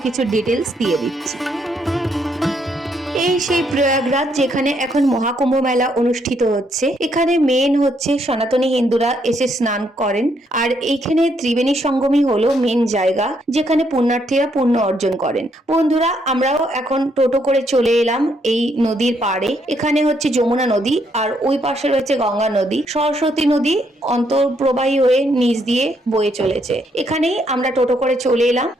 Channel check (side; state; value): both; normal; correlation 0.73